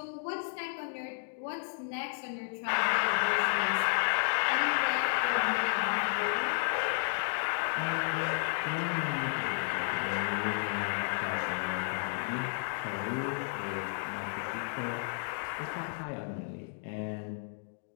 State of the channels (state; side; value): silent; right; digital silence